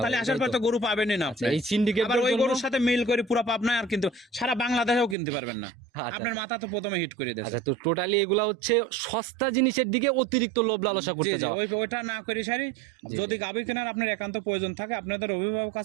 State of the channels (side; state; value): left; drops out; at 5.2 s